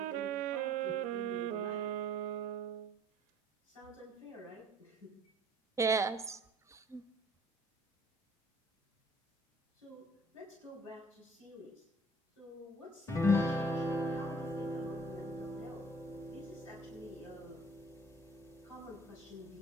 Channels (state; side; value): normal; both; correlation 0.53